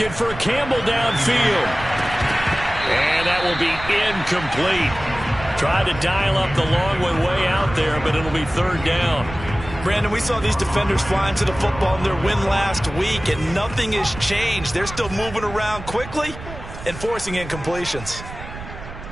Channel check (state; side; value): noise; right; rumble, 12 dB below the sound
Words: for Campbell downfield. And that will be incomplete. Tried to dial up the long one way out there, but it'll be 3rd down. Brandon, we saw these defenders flying to the football in their win last week, and nothing has changed. They're still moving around quickly and forcing incompletions.